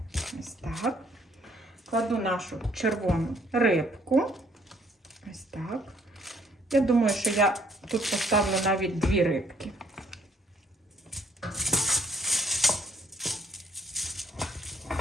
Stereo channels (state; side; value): normal; both; correlation 0.64